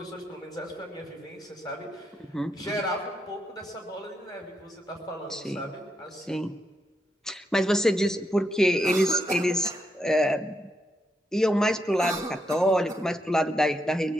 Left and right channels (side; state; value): both; normal; correlation 0.81